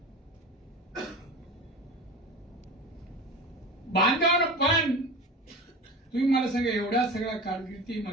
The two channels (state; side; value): normal; both; correlation 0.32